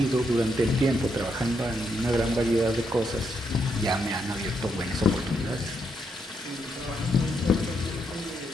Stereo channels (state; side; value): normal; both; correlation 0.78